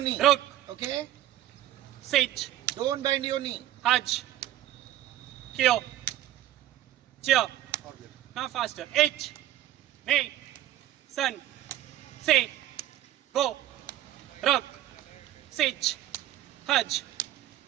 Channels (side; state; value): left; quieter; 13.3 dB